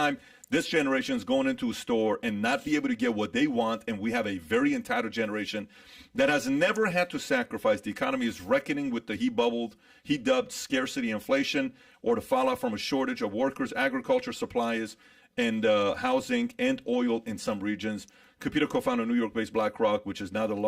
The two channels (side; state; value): both; identical; correlation 1.00